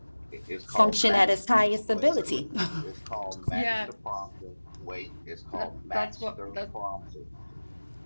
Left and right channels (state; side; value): inverted; both; correlation -1.00